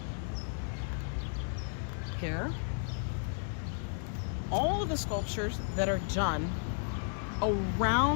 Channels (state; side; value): silent; right; digital silence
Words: Here. all of the sculptures that are done